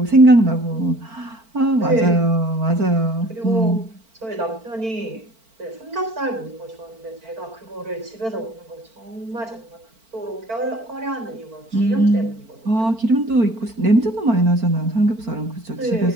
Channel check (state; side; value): late; left; 4.5 ms